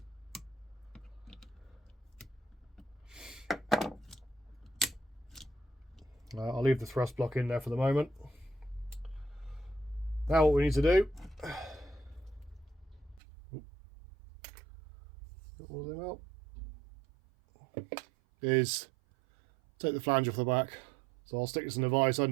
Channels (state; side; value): drops out; left; at 13.2 s